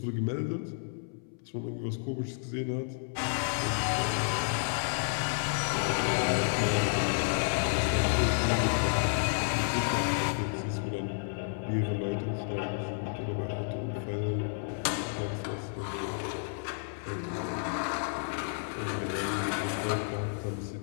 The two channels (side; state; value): right; silent; 57 dB below the other